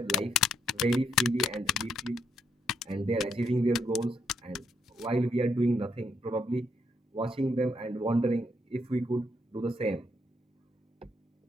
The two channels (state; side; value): normal; both; correlation 0.76